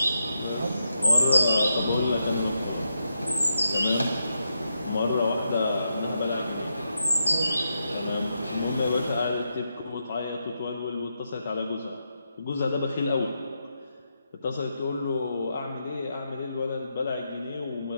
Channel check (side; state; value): both; inverted; correlation -0.84